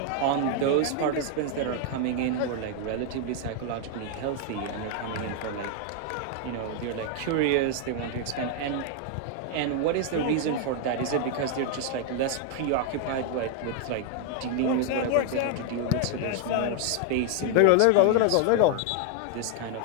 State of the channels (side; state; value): both; different; correlation 0.01